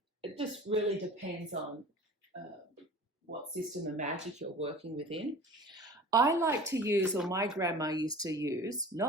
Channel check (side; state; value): both; normal; correlation 0.41